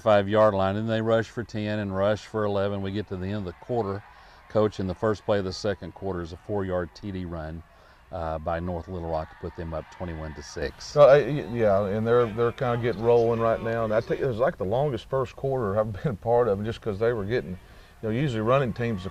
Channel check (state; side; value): identical; both; correlation 1.00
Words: line. And they rush for 10 and rush for 11. We get to the end of the quarter. Coach, in the first play of the second quarter is a 4-yard TD run by North Little Rock to put them up 21-6. Yeah, and they're kind of getting rolling right now. And I think it was like the longest first quarter I've been a part of, just because they were getting, you know, usually running teams, the